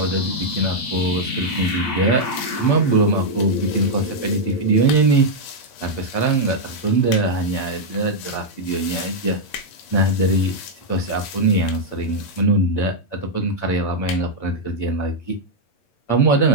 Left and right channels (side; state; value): right; late; 8.6 ms